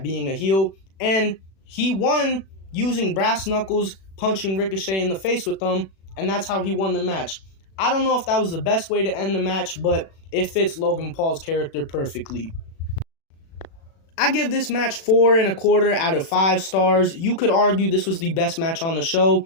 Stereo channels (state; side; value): late; right; 36 ms